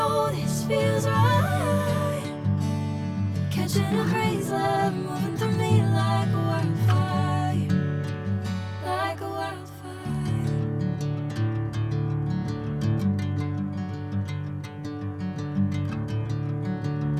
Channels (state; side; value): identical; both; correlation 1.00